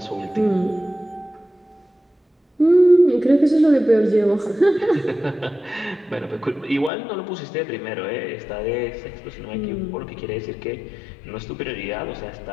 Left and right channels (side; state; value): right; drops out; at 6.9 s